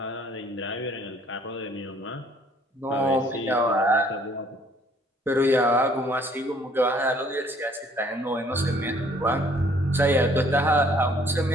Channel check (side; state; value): both; normal; correlation 0.60